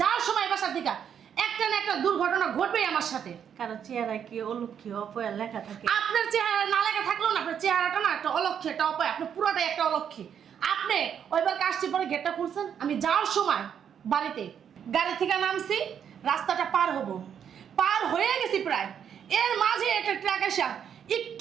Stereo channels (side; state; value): left; quieter; 8.3 dB